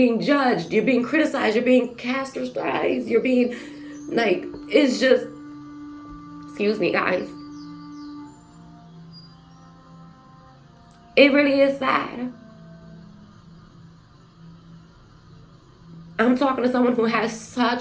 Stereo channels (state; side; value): identical; both; correlation 1.00